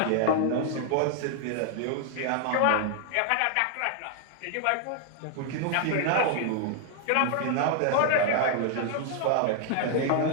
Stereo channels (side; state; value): both; different; correlation 0.00